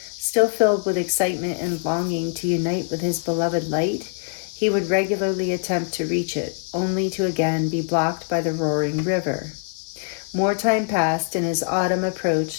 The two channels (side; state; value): right; silent; digital silence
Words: filled with excitement and longing to unite with his beloved light, he would regularly attempt to reach it, only to again be blocked by the roaring river. More time passed, and as autumn